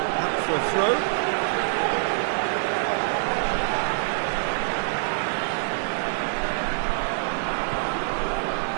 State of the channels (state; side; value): silent; left; digital silence